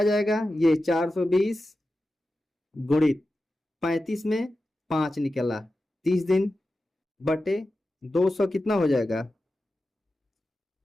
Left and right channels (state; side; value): normal; both; correlation 0.92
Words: जाएगा? ये 420 गुणित 35 में 5 निकला, 30 दिन बटे 200 कितना हो जाएगा?